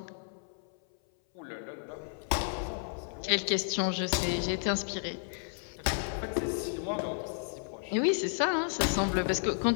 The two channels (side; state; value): right; silent; 56 dB below the other